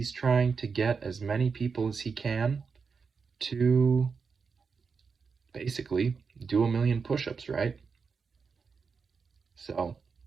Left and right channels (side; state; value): left; quieter; 5.3 dB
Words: trying to get as many people as he can to basically do 1,000,000 push-ups, right? So,